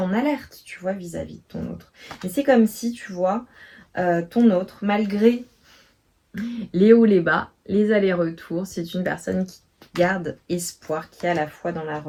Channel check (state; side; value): identical; both; correlation 1.00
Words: alerte, tu vois, vis-à-vis de ton autre. Mais c'est comme si, tu vois, ton autre, malgré les hauts, les bas, les allers-retours, c'est une personne qui garde espoir, qui est à la fois dans la